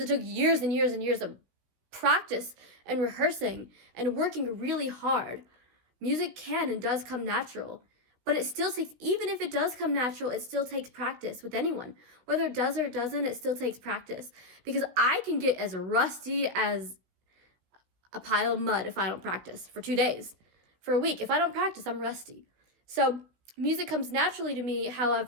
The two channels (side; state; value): left; late; 16 ms